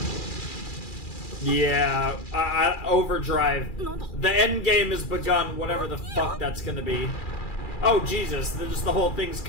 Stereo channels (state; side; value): late; right; 2.4 ms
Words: Yeah, overdrive. The end game has begun, whatever the fuck that's gonna be. Oh, Jesus, just the whole thing's